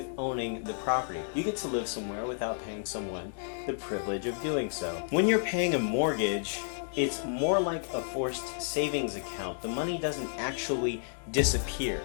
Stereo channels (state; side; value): silent; right; digital silence